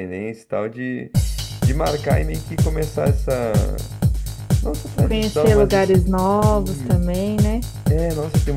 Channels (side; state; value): both; identical; correlation 1.00